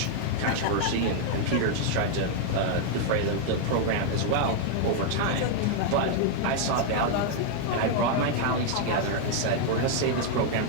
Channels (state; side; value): different; both; correlation 0.00